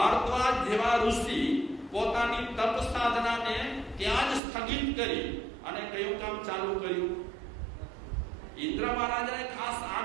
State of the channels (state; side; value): drops out; left; at 4.4 s